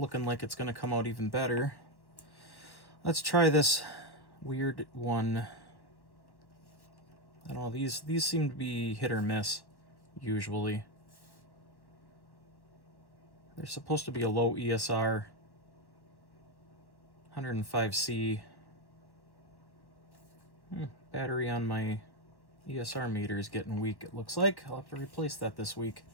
like it's going to come out even better. Let's try this weird one. I don't know, these seem to be hit or miss, usually. They're supposed to be a low ESR, 105C. Battery on my ESR meter is getting weak, it looks like. I'll have to replace that this week.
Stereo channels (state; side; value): late; right; 1.1 ms